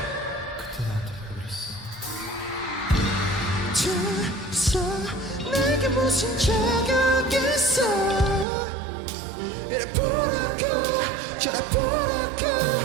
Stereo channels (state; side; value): drops out; left; at 8.5 s